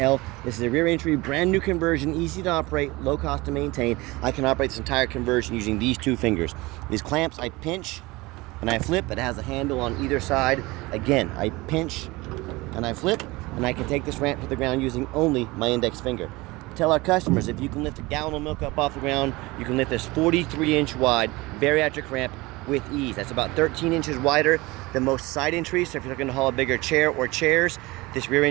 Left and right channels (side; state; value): left; quieter; 22.0 dB